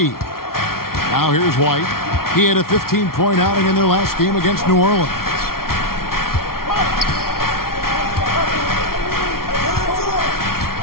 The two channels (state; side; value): late; right; 0.93 ms